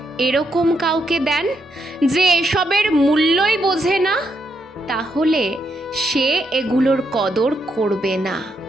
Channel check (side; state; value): both; normal; correlation 0.79